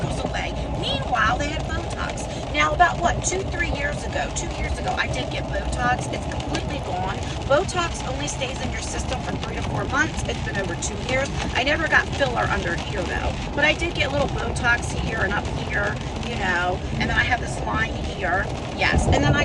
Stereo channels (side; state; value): both; identical; correlation 1.00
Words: away. Meanwhile, they had Botox. Now, about what, 2 years ago, I did get Botox. It's completely gone. Botox only stays in your system for 3 to 4 months. It's been over 2 years. I never got filler under here, though. But I did get little Botox here and up here, you know, and then I have this line here. Yes, and then I